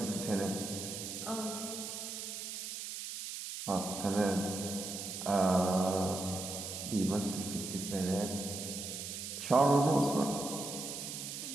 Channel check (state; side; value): noise; right; hiss, 6 dB below the sound